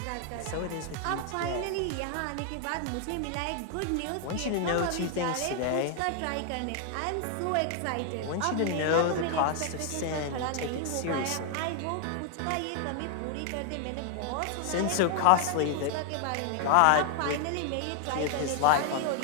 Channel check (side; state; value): both; different; correlation 0.00